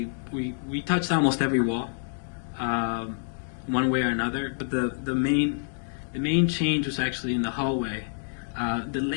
we touched almost every wall. One way or another, but the main change was actually in the hallway. The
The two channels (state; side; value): silent; right; 60 dB below the other